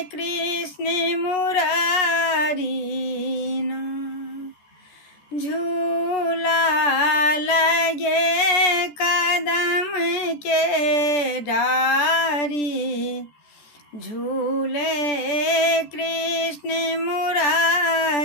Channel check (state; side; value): late; right; 14 ms